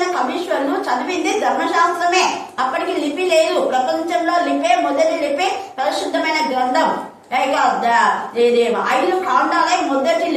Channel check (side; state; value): both; identical; correlation 1.00